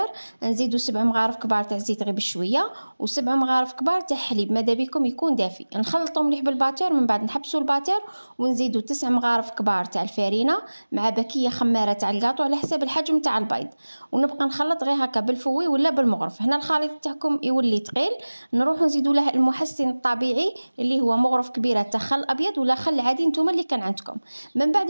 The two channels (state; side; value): inverted; both; correlation -1.00